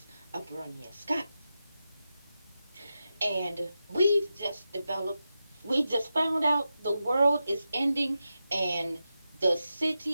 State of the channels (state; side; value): inverted; both; correlation -0.90